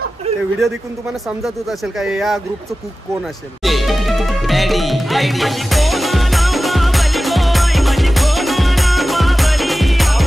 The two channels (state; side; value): normal; both; correlation 0.95